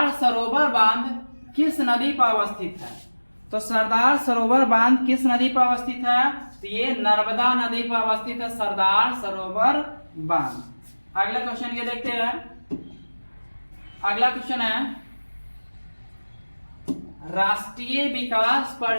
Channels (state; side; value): inverted; both; correlation -1.00